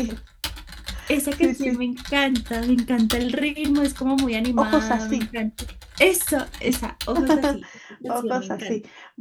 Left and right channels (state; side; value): identical; both; correlation 1.00